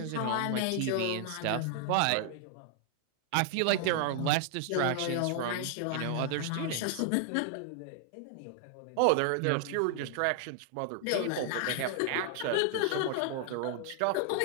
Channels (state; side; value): different; both; correlation 0.00